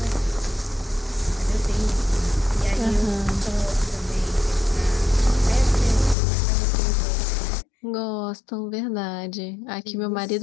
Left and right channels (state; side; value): drops out; right; at 6.2 s